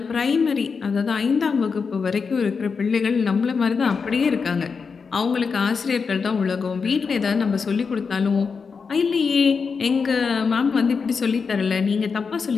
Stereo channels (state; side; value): quieter; right; 5.3 dB